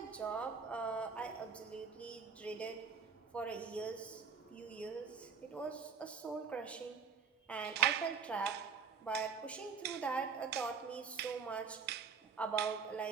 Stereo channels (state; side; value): quieter; left; 6.1 dB